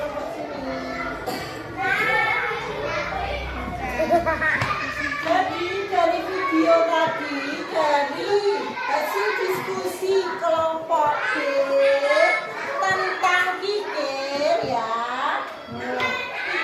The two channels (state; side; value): identical; both; correlation 1.00